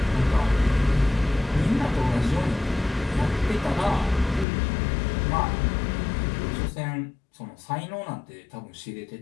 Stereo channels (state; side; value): drops out; right; at 4.5 s